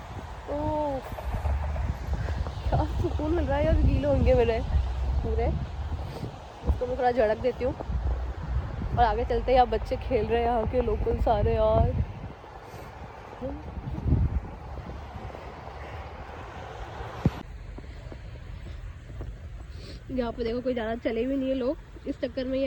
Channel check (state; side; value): identical; both; correlation 1.00